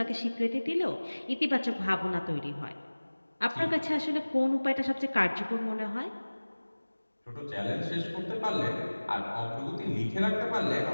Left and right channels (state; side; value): inverted; both; correlation -1.00